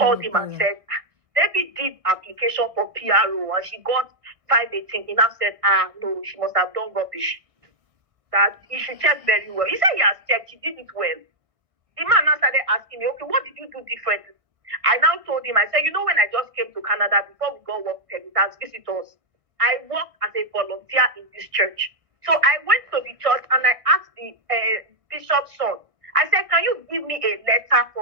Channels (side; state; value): left; late; 1.6 ms